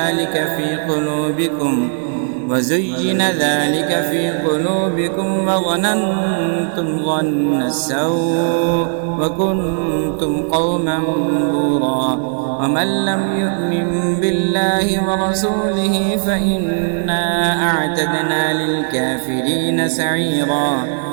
ذلك في قلوبكم وظننتم ظن السوء وكنتم قوما بورا. ومن لم يؤمن بالله ورسوله فإنا أعتدنا للكافرين سعيرا.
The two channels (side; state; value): left; silent; digital silence